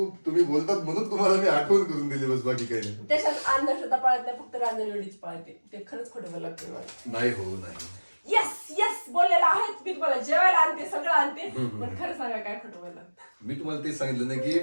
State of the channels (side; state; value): both; inverted; correlation -1.00